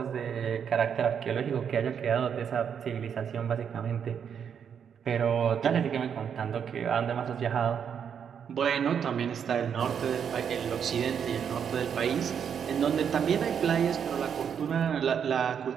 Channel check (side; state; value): left; quieter; 7.7 dB